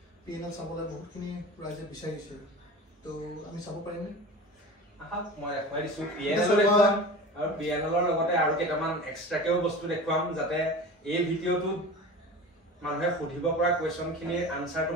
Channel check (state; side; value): normal; both; correlation 0.34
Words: পিএনএল চাবলৈ বহুতখিনি ৰাইজে বিচাৰিছে তো আমি চাব পাৰিম নে মই দেখাই দিছো পিএনএল দেখুৱাম আৰু পিএনএলৰ লগতে আৰু কেইটামান এক্সট্ৰাকেও বস্তু দেখুৱাম যাতে এই ভিডিঅ'টো মানুহে সুধিব পৰা কোৱেশ্চনখিনিৰ আনসাৰটো